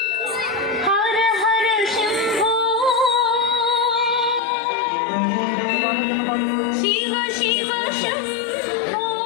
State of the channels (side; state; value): right; drops out; at 4.4 s